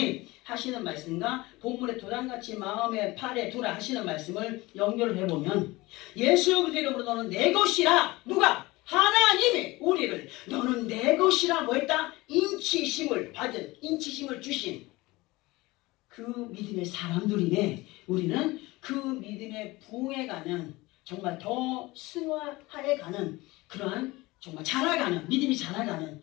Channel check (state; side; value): quieter; right; 21.2 dB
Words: 하시는 말씀과 본문의 도장같이 마음에 팔에 두라 하시는 말씀을 연결을 해보면 예수 그리스도 이름으로 너는 내 것이라. 누가? 하나님이 우리를 너는 내 것이라 뭐 했다? 인치심을 받은, 인치심을 주신 그 믿음의 사람들이네. 우리는 그 믿음의 부흥해가는, 정말 더 승화해가는 그러한 정말 자라가는, 믿음이 자라가는,